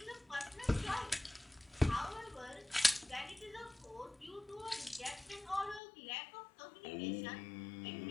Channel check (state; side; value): drops out; right; at 5.8 s